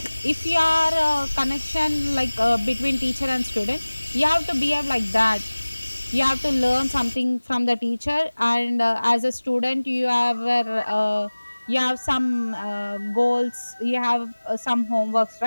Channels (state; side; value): inverted; both; correlation -1.00